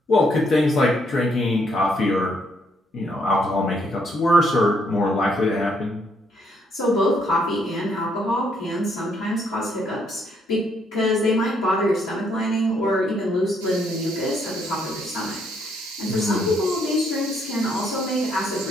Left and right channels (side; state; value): both; normal; correlation 0.72